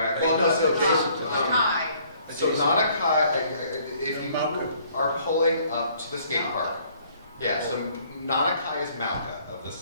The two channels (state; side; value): inverted; both; correlation -0.61